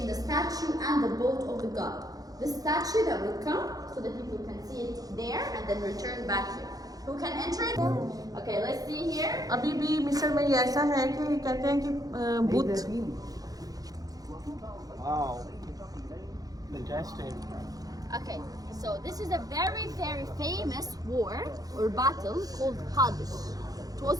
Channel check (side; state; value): left; late; 0.18 ms